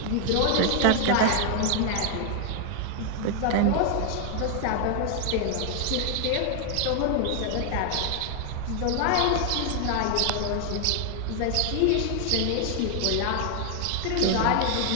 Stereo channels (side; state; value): both; different; correlation 0.00